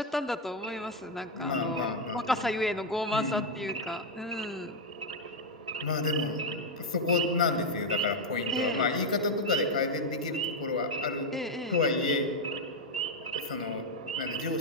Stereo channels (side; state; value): both; normal; correlation 0.03